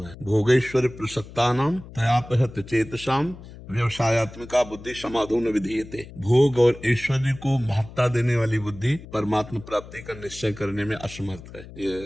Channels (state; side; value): noise; left; hum, 16 dB below the sound